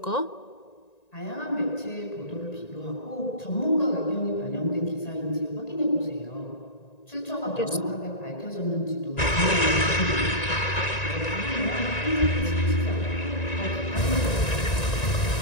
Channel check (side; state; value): right; late; 1.9 ms